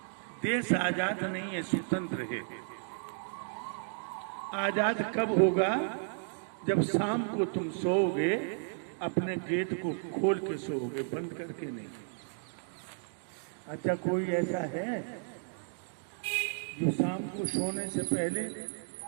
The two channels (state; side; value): silent; left; digital silence